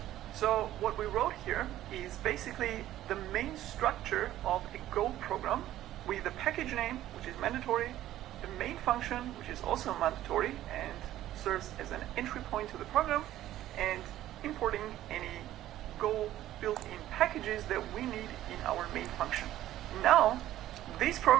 So what we wrote here is basically the main structure of a Go program with the package name, which is mandatory, the main function, which is also mandatory and serves as an entry point to the program, and importing any Go built-in packages that we need in our main function. Now, this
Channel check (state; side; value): quieter; left; 13.5 dB